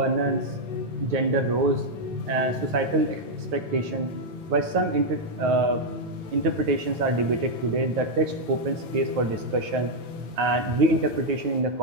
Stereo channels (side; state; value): left; late; 9.4 ms